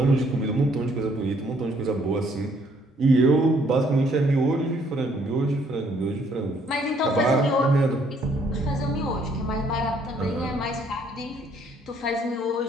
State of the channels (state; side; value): normal; both; correlation 0.65